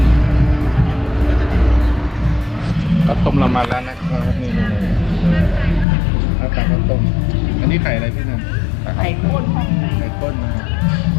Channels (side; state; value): right; drops out; at 5.9 s